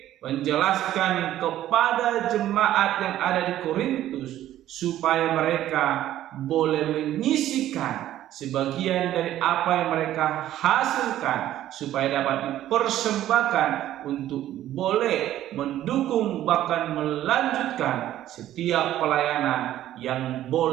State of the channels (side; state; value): left; quieter; 12.9 dB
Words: menjelaskan kepada jemaat yang ada di Korintus supaya mereka boleh menyisihkan sebagian dari apa yang mereka hasilkan, supaya dapat dipersembahkan untuk boleh mendukung bahkan melanjutkan setiap pelayanan yang